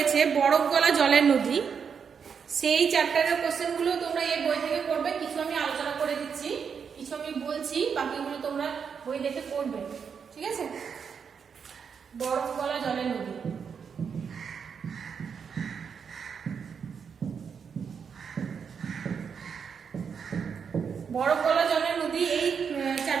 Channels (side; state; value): left; quieter; 6.6 dB